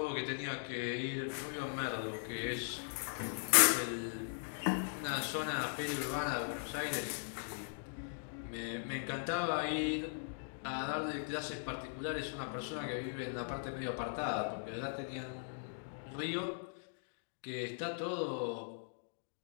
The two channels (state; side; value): silent; right; digital silence